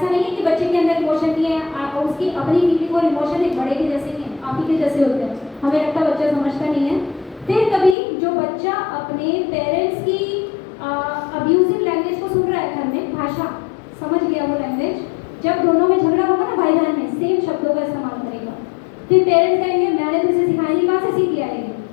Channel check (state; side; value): drops out; right; at 8.0 s